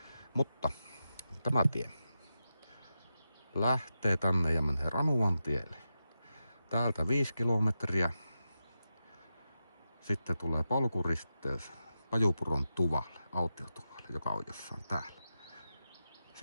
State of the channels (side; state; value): both; inverted; correlation -0.89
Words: Mutta tämä tie lähtee tänne ja menee Ranuantielle. Täältä 5 kilometriä. Sitten tulee polkuristeys Pajupuron tuvalle, autiotuvalle, joka on jossain täällä.